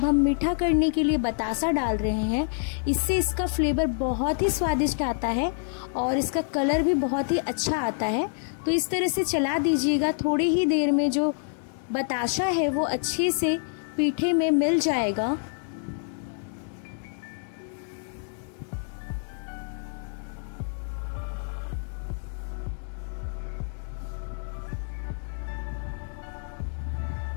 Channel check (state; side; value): silent; right; digital silence